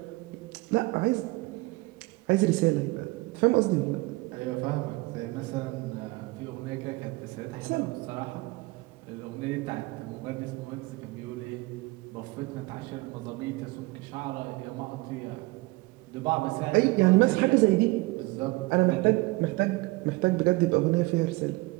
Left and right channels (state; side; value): quieter; left; 22.8 dB